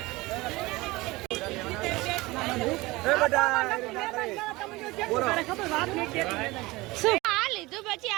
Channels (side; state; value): left; quieter; 21.2 dB